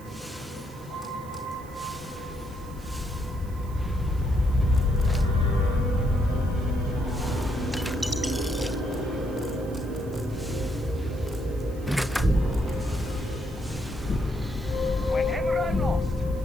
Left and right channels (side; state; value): right; noise; hiss, 24 dB below the sound